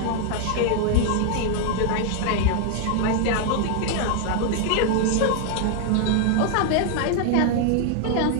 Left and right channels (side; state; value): both; different; correlation 0.00